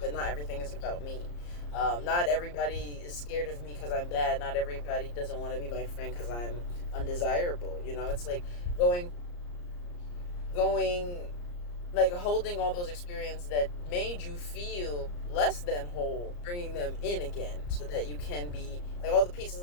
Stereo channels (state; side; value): late; right; 34 ms